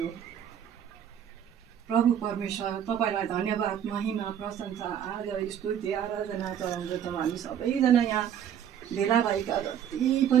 प्रभु परमेश्वर तपाईँलाई धन्यवाद महिमा प्रशंसा आदर स्तुति आराधना चढाउँदछौँ हामी सबैजना यहाँ भेला भएका जति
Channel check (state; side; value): quieter; left; 9.3 dB